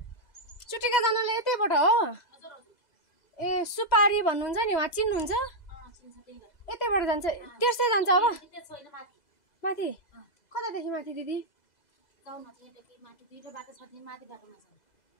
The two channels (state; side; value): late; right; 2.0 ms